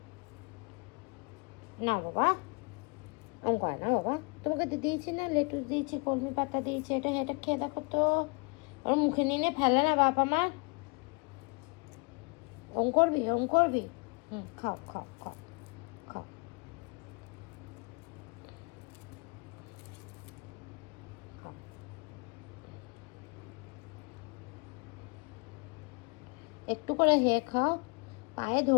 না বাবা, ওম করে না বাবা। তোমাকে দিয়েছি না, লেটুস দিয়েছি, কলমি পাতা দিয়েছি, এটা এটা খেয়ে দেখো তো। ওর মুখে নিয়ে ফেলে না বাপ আমার। ওম করবি, ওম করবি। খাও খাও খাও খাও। খাও। একটু করে হে খাও। পায়ে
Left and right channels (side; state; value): right; quieter; 33.6 dB